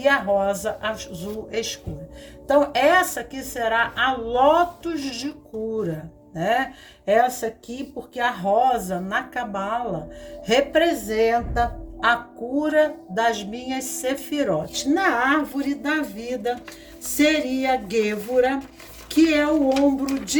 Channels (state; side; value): identical; both; correlation 1.00